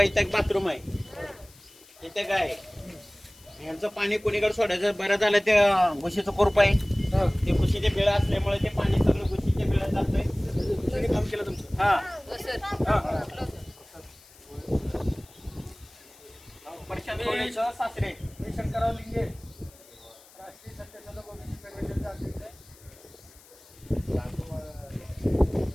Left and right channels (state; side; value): noise; left; hiss, 24 dB below the sound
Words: इथं एक बाथरूम आहे इथे काय यांचं पाणी कोणीकडे सोडायचं बरं झालं ते घुशीचं कोरप आहे हां ते घुशीचे बिळं असल्यामुळे ते पाणी सगळं घुशीच्या बिळात जातंय दुसरीने काम केलं तुमचं हा हां प्रशांत कोळेचं सासरे मी शंकरराव लिंगे राष्ट्रीय सत्यशोधक ओबीसी फेडरेशनचा अध्यक्ष आहे